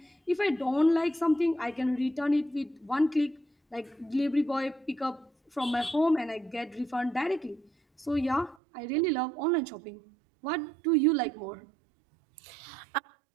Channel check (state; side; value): drops out; left; at 8.6 s